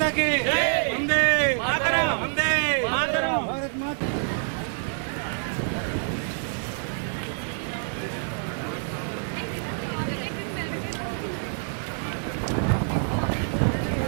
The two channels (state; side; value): silent; left; 60 dB below the other